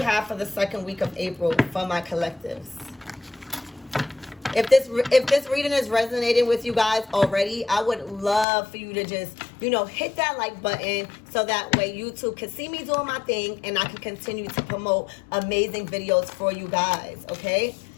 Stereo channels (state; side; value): drops out; right; at 8.5 s